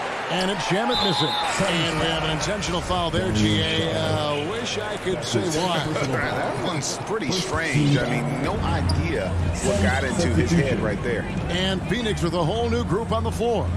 And it's Shamet missing. And we have an intentional foul there, G.A. Wish I could say why. That one's pretty strange. I mean, no idea what got into his head right there. And Phoenix with a whole new group on the floor.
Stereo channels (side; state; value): both; identical; correlation 1.00